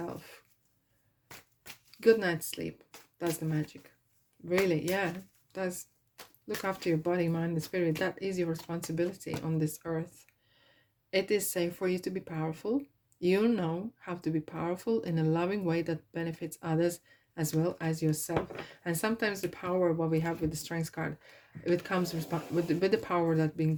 Good night's sleep does the magic. Really, yeah, does. Look after your body, mind, and spirit. That is your responsibility on this earth. It is safe for you to be powerful. You know how to be powerful in a loving way that benefits others as well as yourself. And sometimes the power, what we have with the Strengths card, it comes with the power that's been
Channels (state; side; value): identical; both; correlation 1.00